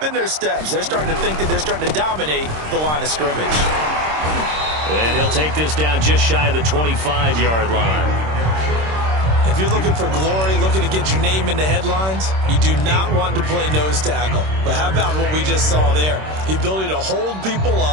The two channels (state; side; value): late; left; 26 ms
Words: in their steps. They're starting to think that they're starting to dominate the line of scrimmage. And he'll take this down just shy of the 25-yard line. If you're looking for glory, looking to get your name in the headlines, you do not want to play nose tackle. But how about what we just saw there? The ability to hold people